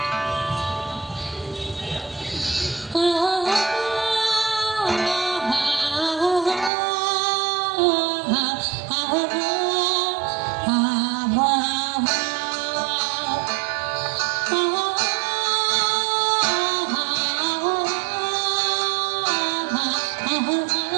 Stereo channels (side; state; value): left; drops out; at 6.7 s